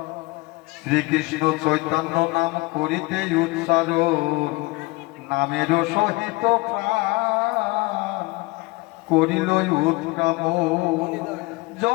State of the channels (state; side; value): quieter; right; 23.0 dB